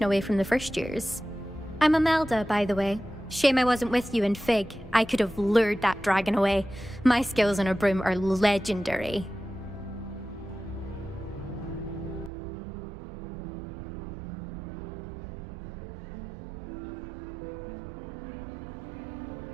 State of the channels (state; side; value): drops out; left; at 12.3 s